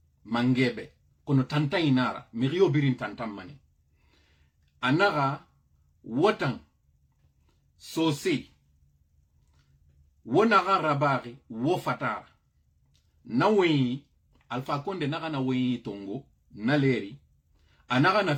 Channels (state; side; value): identical; both; correlation 1.00